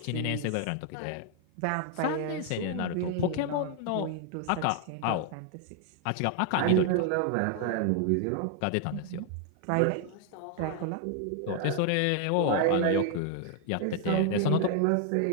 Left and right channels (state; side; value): different; both; correlation 0.00